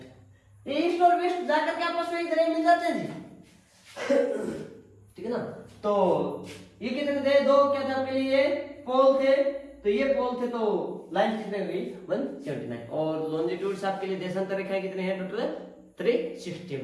ईस्ट और वेस्ट जाकर के आपस में इधर मिल जाते हैं जी ठीक है ना। तो ये कितने थे दो क्या थे आपके लिए पोल थे, तो ये पोल थे तो लाइन कितने हुई 179 और लॉन्जिट्यूड्स आपके लिए देशांतर रेखाएं कितने हैं टोटल 360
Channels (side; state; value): both; identical; correlation 1.00